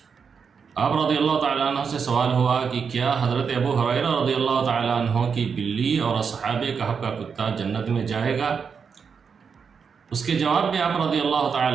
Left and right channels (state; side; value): quieter; left; 6.1 dB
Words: آپ رضی اللہ تعالیٰ عنہ سے سوال ہوا کہ کیا حضرت ابو ہریرہ رضی اللہ تعالیٰ عنہ کی بلی اور اصحاب کہف کا کتا جنت میں جائے گا؟ اس کے جواب میں آپ رضی اللہ